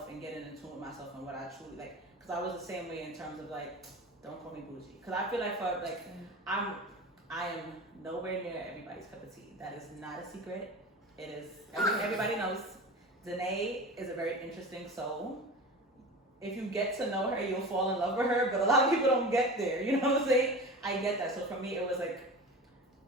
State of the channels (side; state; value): both; normal; correlation 0.33